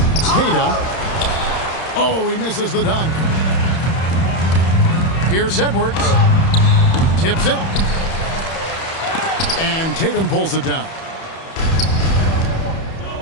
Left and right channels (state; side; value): late; right; 31 ms